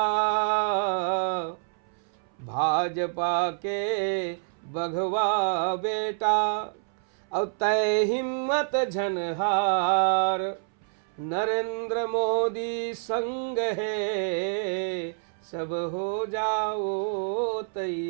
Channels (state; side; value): silent; left; 60 dB below the other